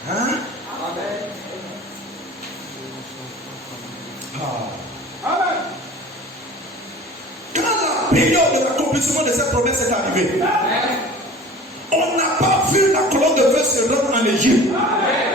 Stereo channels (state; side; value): normal; both; correlation 0.41